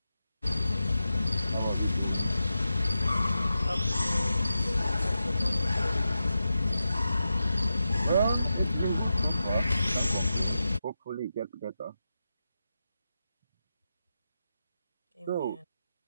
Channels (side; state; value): both; inverted; correlation -0.90